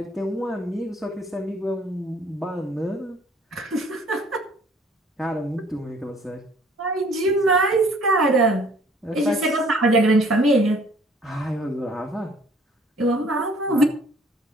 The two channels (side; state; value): both; normal; correlation 0.56